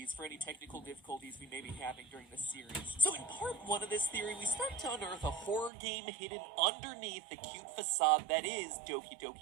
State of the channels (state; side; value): drops out; left; at 5.7 s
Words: for any technical difficulties we may be having during this series. So in part 1 of this theory, we start to unearth a horror game hidden underneath the cute facade that is Doki